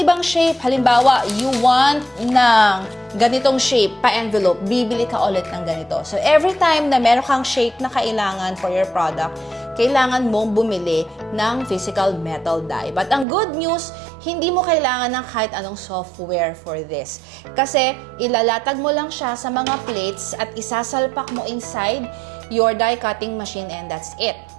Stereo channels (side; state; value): left; drops out; at 13.2 s